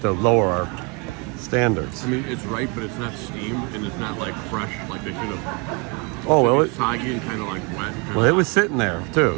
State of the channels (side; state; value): left; quieter; 30.6 dB